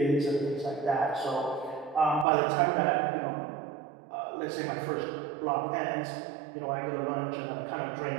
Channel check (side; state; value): left; drops out; at 2.2 s